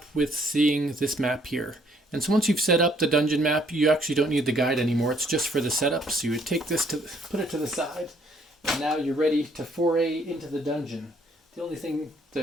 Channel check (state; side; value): normal; both; correlation 0.65